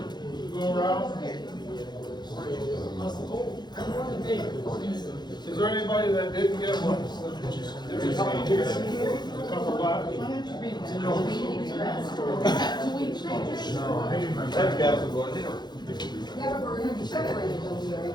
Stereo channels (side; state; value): right; late; 0.21 ms